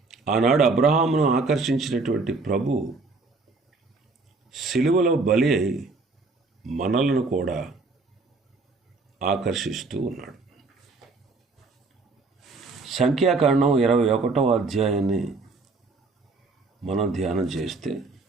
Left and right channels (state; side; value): quieter; left; 3.8 dB